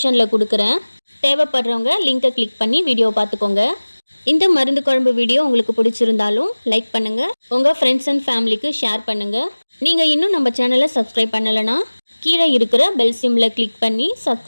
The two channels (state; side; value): inverted; both; correlation -1.00